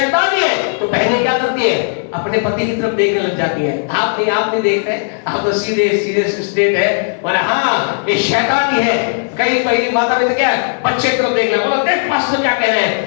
ही है तो बहनें क्या करती है? अपने पति की तरफ देखने लग जाती है। आप नहीं देख रहे, आप तो सीधे स्टेट है, बोले हाँ ये शैतान ही है। कई माता पिता क्या है? बच्चे की तरफ देखना, बोला देख पास्टर क्या कह रहे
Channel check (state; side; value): silent; right; 67 dB below the other